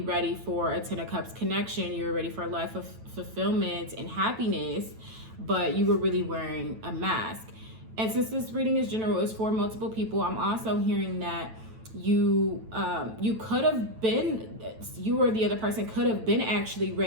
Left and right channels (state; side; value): late; left; 9.1 ms